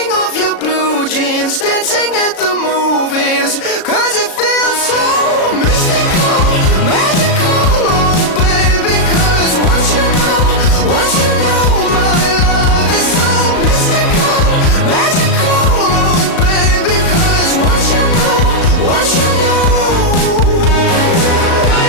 off your blue jeans, dancing at the movies, 'cause it feels so mystical, magical, oh baby. 'Cause once you know my love is so mystical, magical, oh baby. 'Cause once you know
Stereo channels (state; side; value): late; right; 37 ms